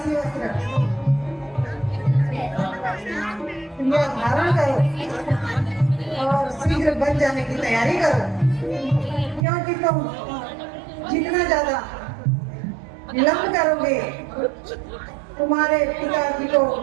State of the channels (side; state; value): left; drops out; at 9.5 s